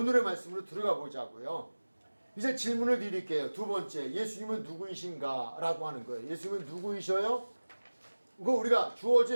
말씀으로 들어가 보자고요. 이제 질문을 드릴게요. 두 번째, 예수님은 누구이신가? 라고 하는 거예요. 예수님은 누구이셔요? 그거 우리가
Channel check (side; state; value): both; inverted; correlation -1.00